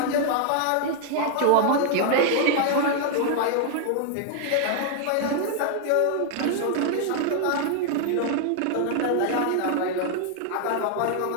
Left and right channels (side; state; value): both; different; correlation 0.00